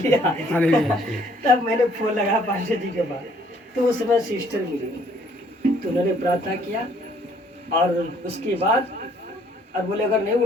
तब मैंने फोन लगा पास्टर जी के पास, तो उस समय सिस्टर मिली, तो उन्होंने प्रार्थना किया, और उसके बाद और बोले अगर नहीं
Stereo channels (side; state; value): both; normal; correlation 0.62